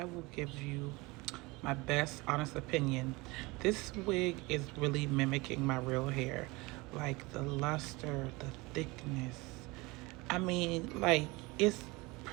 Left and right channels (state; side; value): quieter; left; 23.4 dB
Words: will give you my best honest opinion. This wig is really mimicking my real hair. Like the luster, the thickness. I mean, like, it's